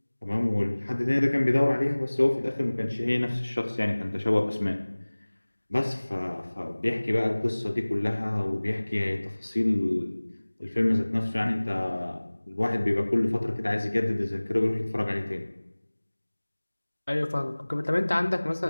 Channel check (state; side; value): inverted; both; correlation -1.00